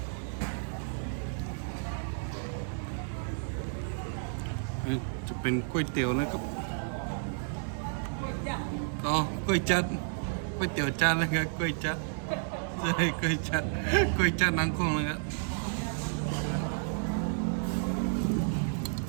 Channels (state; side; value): silent; left; digital silence